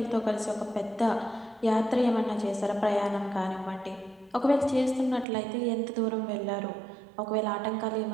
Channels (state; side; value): drops out; left; at 5.2 s